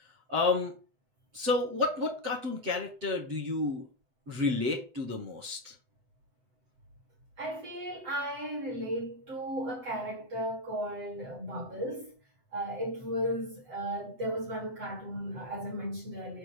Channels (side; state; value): left; late; 7.9 ms